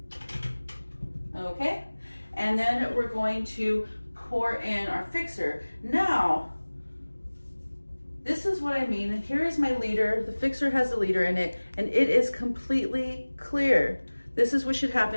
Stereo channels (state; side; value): inverted; both; correlation -1.00